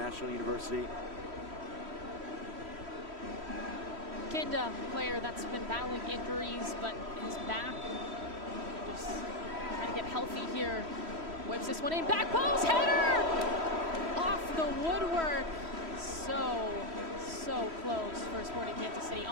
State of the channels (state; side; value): late; left; 3.1 ms